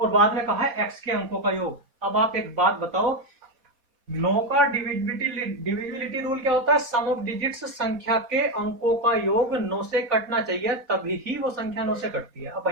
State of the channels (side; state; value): left; late; 4.2 ms